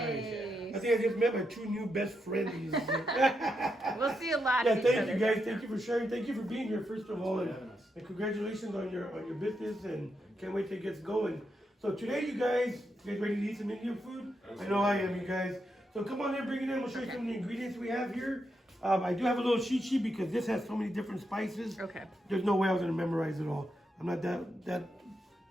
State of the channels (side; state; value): both; normal; correlation 0.83